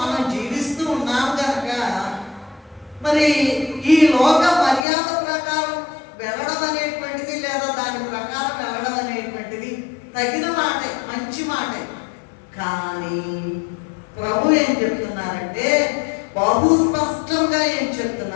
జీవిస్తూ ఉన్నాం కనుక మరి ఈ లోక మర్యాద ప్రకారం వెళ్ళడం అనేటువంటిది, లేదా దాని ప్రకారం వెళ్ళడం అనేటువంటిది తగిన మాటే, మంచి మాటే. కానీ ప్రభు ఏం చెప్తున్నారంటే, బహు స్పష్టంగా ఏం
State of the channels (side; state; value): right; drops out; at 4.9 s